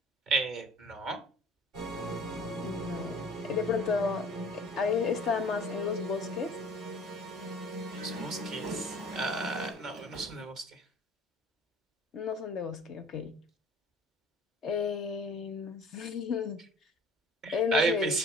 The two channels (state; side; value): normal; both; correlation 0.48